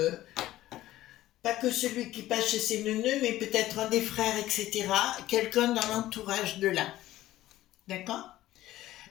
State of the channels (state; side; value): quieter; right; 15.0 dB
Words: pas que celui qui passe chez ses neuneux, mais peut-être un des frères, etc. Quelqu'un dans l'entourage de là. D'accord?